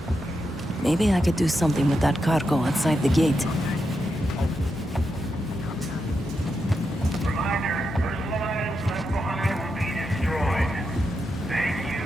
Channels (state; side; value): normal; both; correlation 0.86